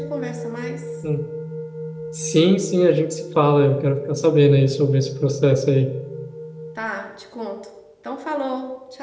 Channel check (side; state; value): both; identical; correlation 1.00